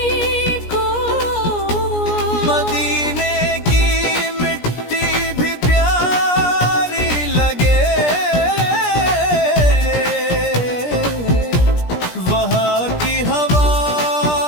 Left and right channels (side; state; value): right; late; 17 ms